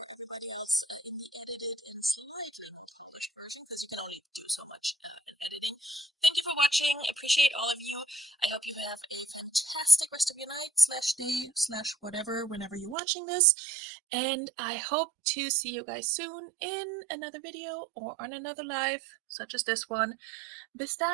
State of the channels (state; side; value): drops out; left; at 13.0 s